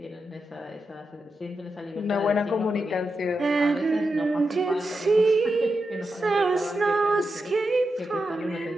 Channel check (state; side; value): normal; both; correlation 0.88